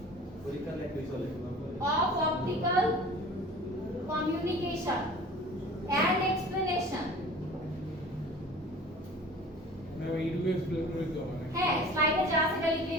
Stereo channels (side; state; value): both; normal; correlation 0.43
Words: of optical communication and explanation। এইটুকু এক্সপ্লেন করে দিও মানে হ্যাঁ, স্লাইডে যা আছে সেটা